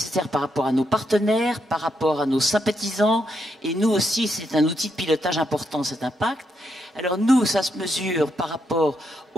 par rapport à nos partenaires, par rapport à nos sympathisants. Et nous aussi, c'est un outil de pilotage important, cet impact. Alors nous, ça se mesure par rapport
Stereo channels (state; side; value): normal; both; correlation 0.80